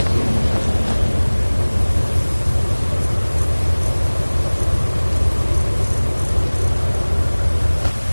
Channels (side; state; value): both; inverted; correlation -1.00